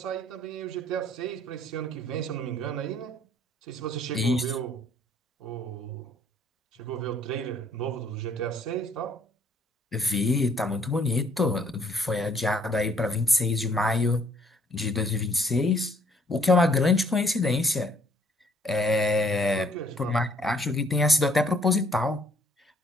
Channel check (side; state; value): both; normal; correlation 0.63